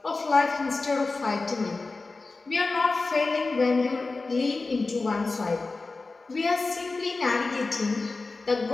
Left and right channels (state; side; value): quieter; right; 3.7 dB